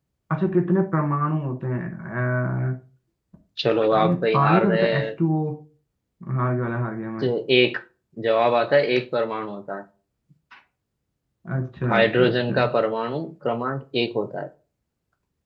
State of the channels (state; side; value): identical; both; correlation 1.00